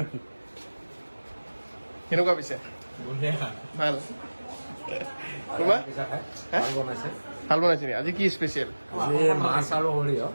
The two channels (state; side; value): inverted; both; correlation -1.00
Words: কেনেকুৱা পিছে ভাল তোমাৰ ভাল বনাইছে নেকি আজি কি স্পেচিয়েল মাছ আৰু সৰিয়হ